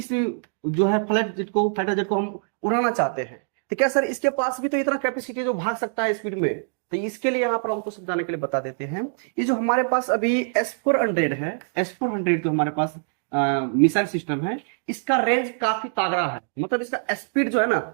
जो है फाइटर जेट को हम उड़ाना चाहते हैं, तो क्या सर इसके पास भी तो इतना कैपेसिटी जो भाग सकता है स्पीड में, तो इसके लिए यहाँ पर हमको समझाने के लिए बता देते हैं। ये जो हमारे पास अभी S-400 है, S-400 जो हमारे पास मिसाइल सिस्टम है, इसका रेंज काफी तगड़ा है, मतलब इसका स्पीड जो है ना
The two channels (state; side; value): silent; left; digital silence